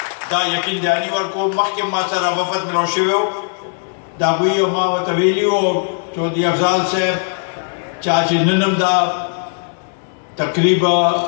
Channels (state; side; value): silent; right; 67 dB below the other